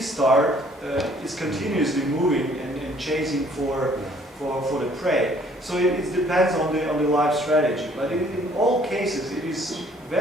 star is continuously moving and chasing for the prey. So it depends on the life strategy. But in all cases, it is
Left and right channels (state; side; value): normal; both; correlation 0.59